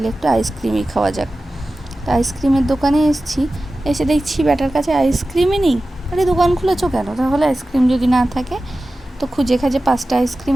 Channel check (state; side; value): normal; both; correlation 0.95